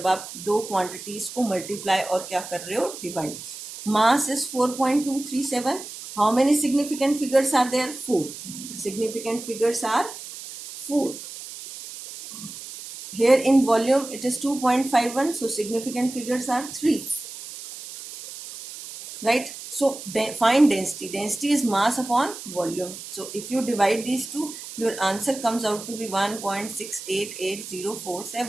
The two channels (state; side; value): noise; right; hiss, 12 dB below the sound